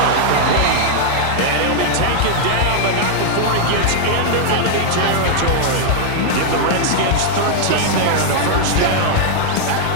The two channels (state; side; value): different; both; correlation -0.01